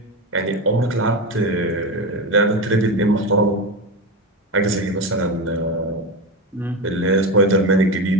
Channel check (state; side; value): normal; both; correlation 0.19